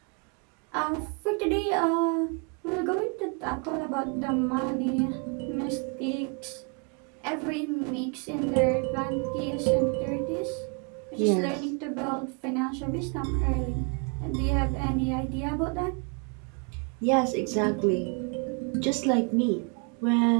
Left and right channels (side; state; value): left; quieter; 36.1 dB